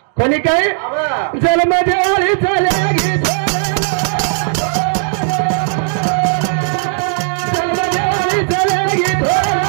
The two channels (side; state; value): left; silent; digital silence